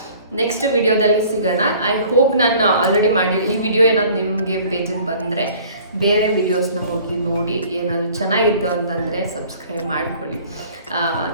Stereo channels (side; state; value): both; inverted; correlation -0.51